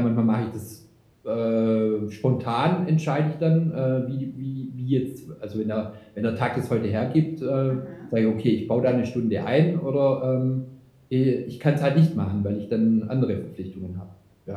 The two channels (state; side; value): identical; both; correlation 1.00